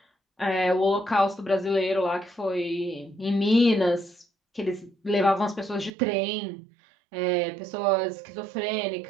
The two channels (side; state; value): left; drops out; at 5.9 s